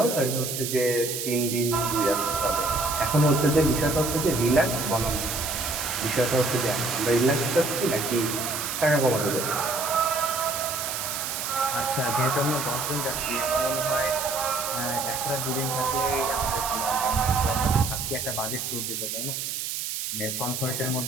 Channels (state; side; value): noise; right; hiss, 4 dB below the sound